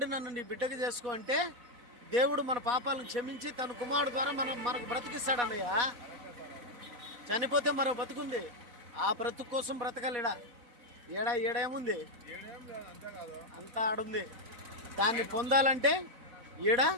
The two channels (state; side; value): late; left; 4.2 ms